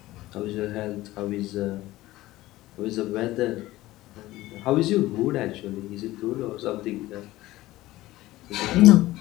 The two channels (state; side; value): quieter; right; 17.1 dB